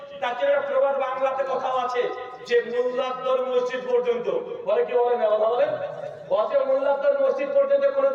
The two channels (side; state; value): both; identical; correlation 1.00